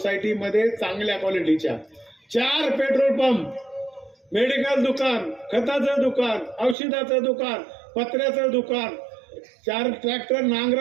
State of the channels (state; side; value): drops out; left; at 6.8 s